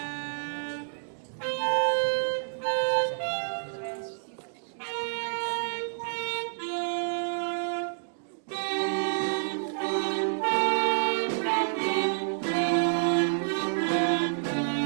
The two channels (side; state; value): left; silent; digital silence